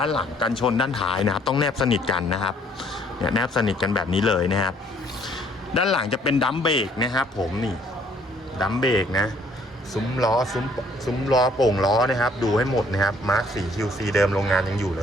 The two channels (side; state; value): both; normal; correlation 0.62